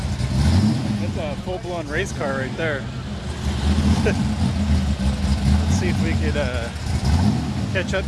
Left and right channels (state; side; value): identical; both; correlation 1.00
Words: That's a full-blown race car right there. Let's see if we could catch up